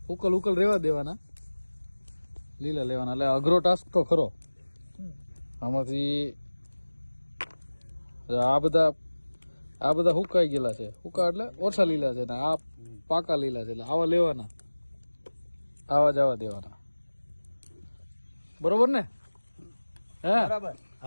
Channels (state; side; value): inverted; both; correlation -1.00